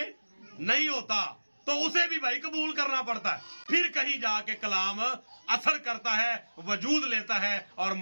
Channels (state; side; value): inverted; both; correlation -1.00